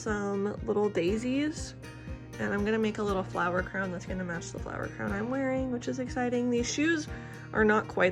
little daisies and I'm gonna make a little flower crown that's gonna match the flower crown I'm wearing, which is exciting. These shoes are not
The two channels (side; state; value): both; identical; correlation 1.00